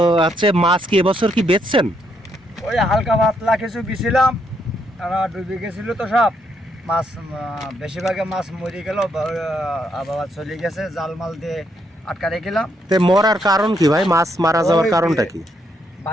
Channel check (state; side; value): normal; both; correlation 0.75